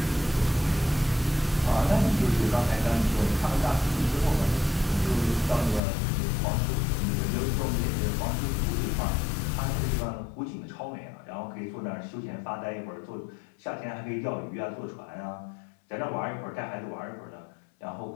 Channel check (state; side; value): drops out; right; at 5.8 s